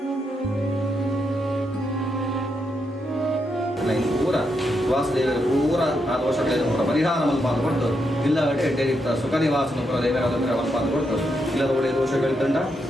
ಪೂರ ವಾಸುದೇವರ ಪೂರ ಆ ದೋಷಗಳನ್ನು ಪೂರ ಪರಿಹಾರ ಮಲ್ಪಾದ ಕೊಟ್ಟು ಇಲ್ಲ ಎಡ್ಡೆರಿತ್ತ ಸುಖ ನಿವಾಸನ ಪುರ ದೇವರಾದ ಮಲ್ಪಾದ ಕೊಟ್ಟು ಇಲ್ಲದ ಒಳ್ಳೆಯ ದೋಷಗಳಿದ್ದಂಡ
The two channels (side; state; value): both; normal; correlation 0.82